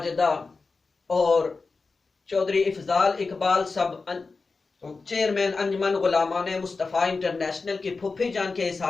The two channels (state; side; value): quieter; right; 4.2 dB